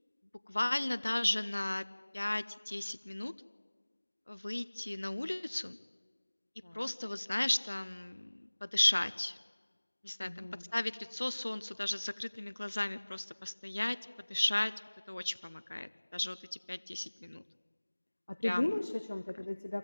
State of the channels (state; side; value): inverted; both; correlation -1.00